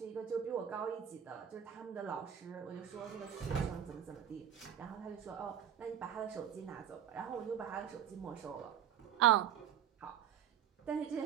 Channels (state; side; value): quieter; left; 9.5 dB